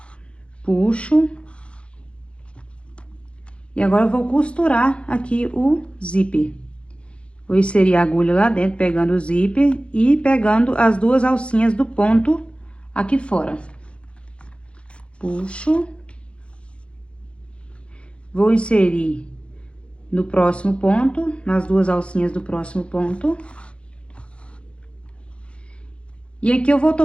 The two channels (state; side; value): late; right; 0.059 ms